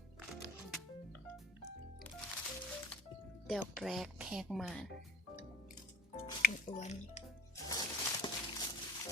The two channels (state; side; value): normal; both; correlation 0.50